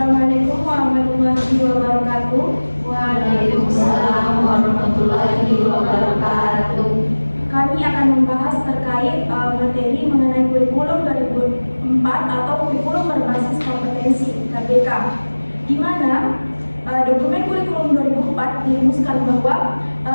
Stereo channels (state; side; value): inverted; both; correlation -1.00